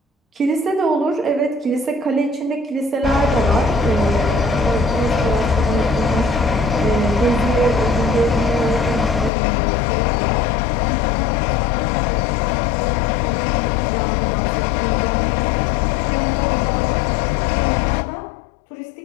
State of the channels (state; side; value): drops out; right; at 9.3 s